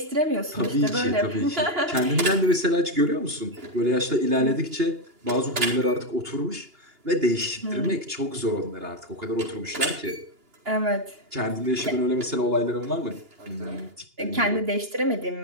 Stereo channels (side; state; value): left; late; 2.9 ms